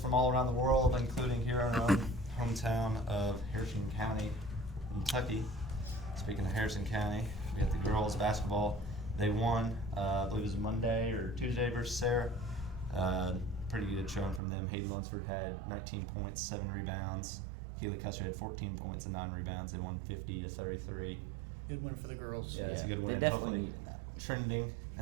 all around the world, including here in our own hometown of Harrison County, Kentucky. Speaking of Harrison County, we got the girls basketball. They won, I believe it was Monday or Tuesday versus Sarah. Pretty good showing from them. Hayden Lunsford had 19 points, 7 rebounds. Keely Custer had 14 points and 9 rebounds. They won 50-33. Good win for the girls. Yeah, it's a good win. Hopefully trending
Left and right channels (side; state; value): left; drops out; at 14.4 s